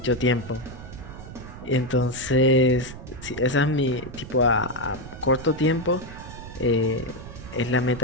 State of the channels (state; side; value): noise; right; rumble, 13 dB below the sound